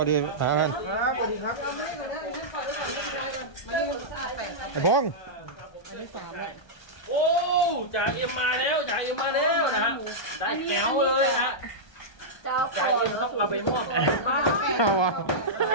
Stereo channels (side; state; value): right; late; 1.3 ms